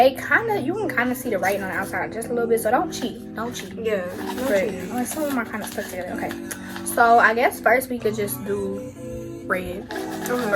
can kind of see the writing on the outside just a little bit, so don't cheat. Yeah, But some of them are kind of stuck together. Okay, so I guess first we could just do red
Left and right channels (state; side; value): identical; both; correlation 1.00